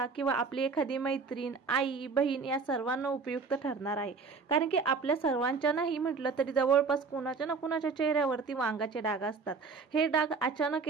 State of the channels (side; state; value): left; quieter; 4.8 dB